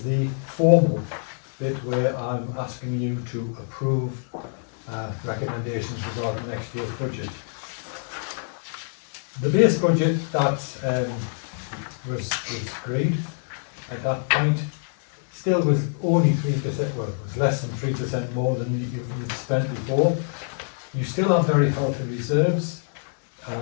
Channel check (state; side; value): silent; right; digital silence